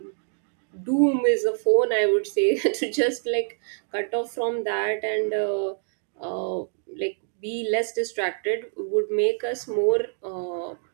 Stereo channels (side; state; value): left; silent; digital silence